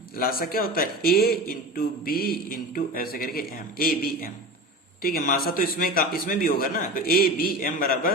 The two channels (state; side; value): normal; both; correlation 0.30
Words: लासा क्या होता है, ए इंटू बी इंटू ऐसे करके एम, ए बी एम, ठीक है। मासा तो इसमें भी होगा ना, तो ए बी एम